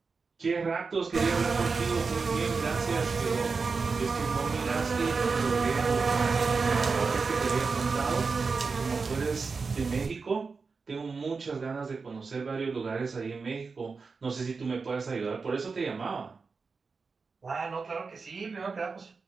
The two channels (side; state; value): left; quieter; 4.7 dB